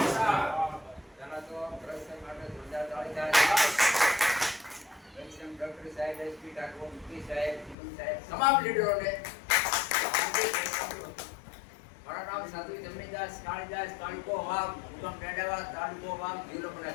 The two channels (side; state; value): right; drops out; at 7.8 s